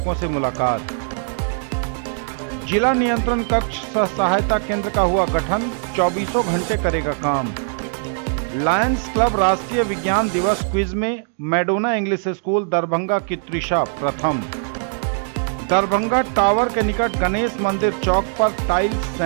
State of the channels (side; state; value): left; silent; digital silence